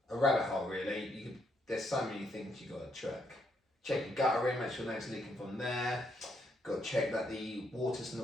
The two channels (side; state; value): both; normal; correlation 0.75